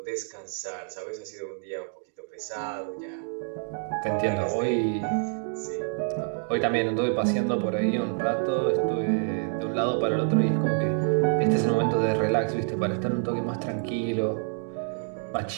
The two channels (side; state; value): left; silent; 56 dB below the other